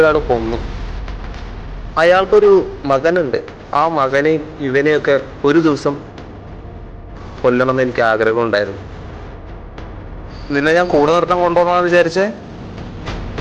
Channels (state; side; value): identical; both; correlation 1.00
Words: കൊന്നു. അയാൾക്കൊരു മകനുണ്ട്. ആ മകനെയും ഇവനെയൊക്കെ ഒരു ദിവസം കൊല്ലണമെന്ന് എനിക്ക് ആഗ്രഹം ഉണ്ടായിരുന്നു. നിന്നെ ഞാൻ കൂടെ നിർത്താൻ കൊണ്ടുപോകണമെന്ന് വിചാരിച്ചേ.